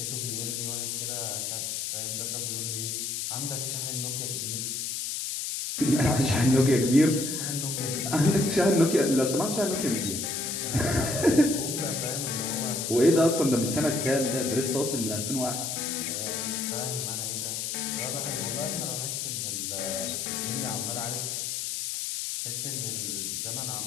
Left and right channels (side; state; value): left; noise; hiss, 3 dB below the sound